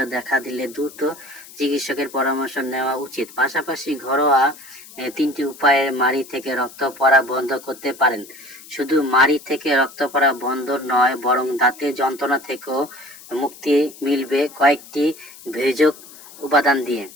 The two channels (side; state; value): left; noise; hiss, 19 dB below the sound